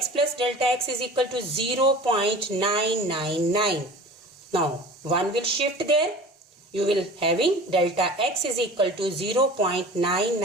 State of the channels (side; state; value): both; normal; correlation 0.40